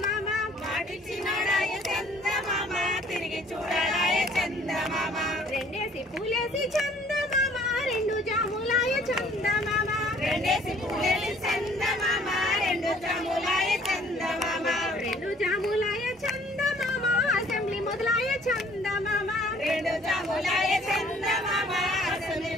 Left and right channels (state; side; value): normal; both; correlation 0.57